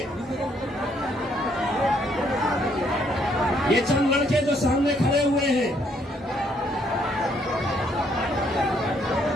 ये चंद लड़के जो सामने खड़े हुए हैं,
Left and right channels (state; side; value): normal; both; correlation 0.69